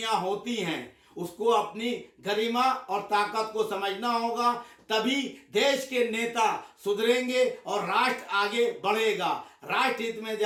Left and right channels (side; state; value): both; identical; correlation 1.00